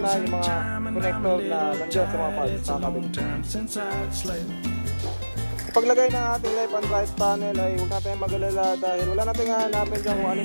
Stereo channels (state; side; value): inverted; both; correlation -1.00